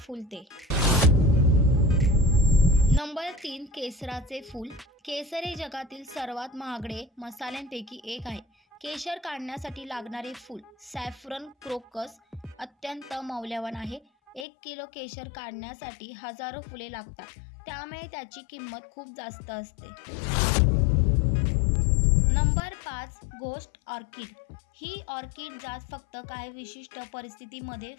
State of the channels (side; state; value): right; drops out; at 14.5 s